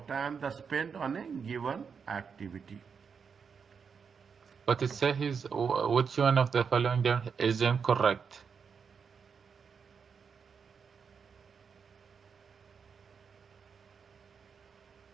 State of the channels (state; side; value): quieter; left; 6.2 dB